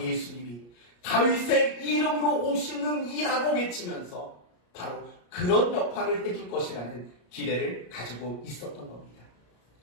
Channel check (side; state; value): right; late; 34 ms